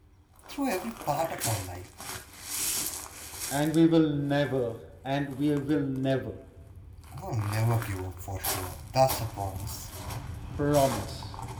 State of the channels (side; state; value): both; identical; correlation 1.00